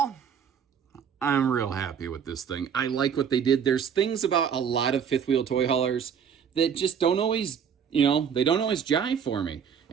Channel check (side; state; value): left; quieter; 7.4 dB